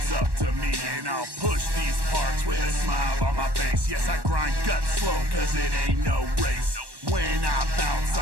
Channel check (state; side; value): late; left; 1.1 ms